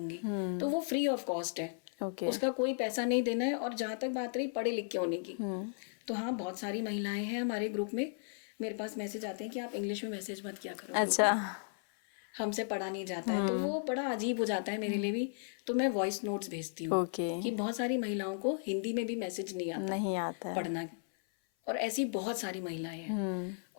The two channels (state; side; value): silent; right; 54 dB below the other